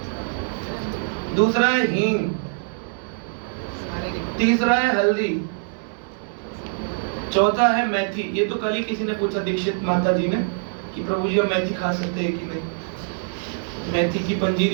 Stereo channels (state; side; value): silent; left; 63 dB below the other